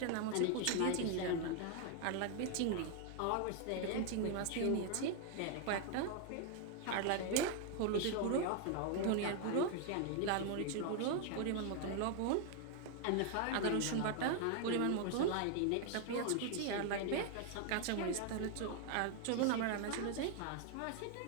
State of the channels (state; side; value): different; both; correlation 0.00